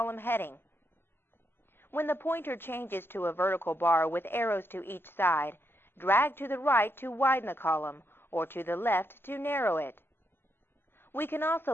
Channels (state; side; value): late; right; 0.11 ms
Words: heading. When the pointer changes to a vertical bar with arrows to each side, drag to the right to widen the column, or to the left to narrow it. We can